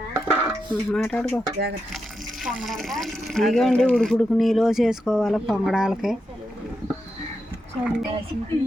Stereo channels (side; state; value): both; normal; correlation 0.86